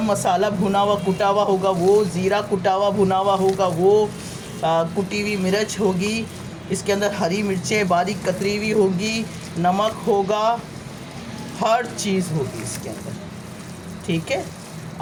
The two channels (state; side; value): identical; both; correlation 1.00